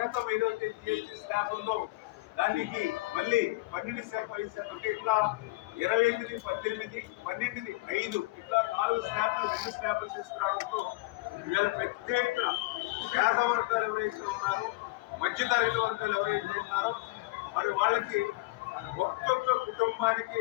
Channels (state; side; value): quieter; right; 22.2 dB